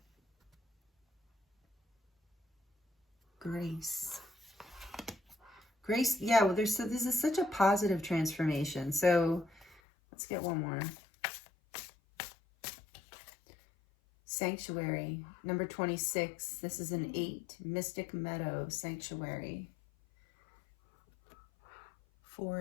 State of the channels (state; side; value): drops out; right; at 9.8 s